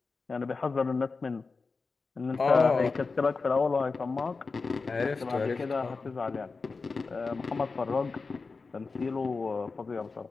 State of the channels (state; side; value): quieter; right; 4.3 dB